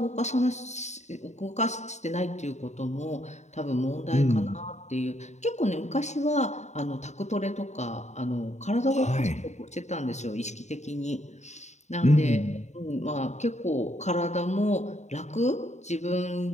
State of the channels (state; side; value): late; right; 0.33 ms